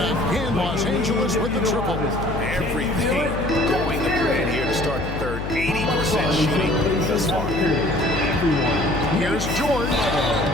Los Angeles with the triple. Everything going to plan here to start the third. 80% shooting thus far. Here's George.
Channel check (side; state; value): left; noise; hum, 6 dB below the sound